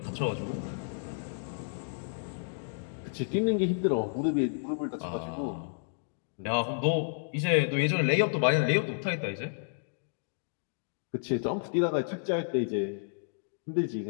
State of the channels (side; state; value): right; silent; digital silence